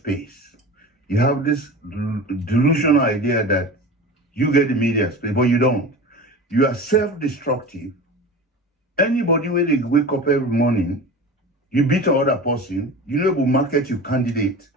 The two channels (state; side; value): normal; both; correlation 0.33